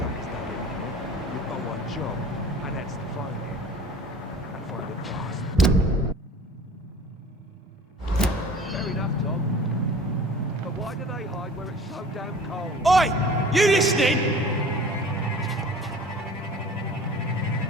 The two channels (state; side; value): normal; both; correlation 0.44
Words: it, you've got one job, and that's to find him. And find it fast. Fair enough, Tom. But why do they hide where it's so damn cold? Oi! You listening?